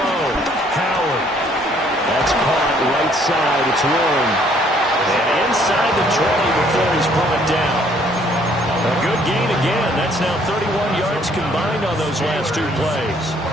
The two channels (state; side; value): normal; both; correlation 0.63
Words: Howard. That's caught right side. It's Warren. And inside the 20 before he's brought down. A good gain again. That's now 31 yards combined on those last two plays.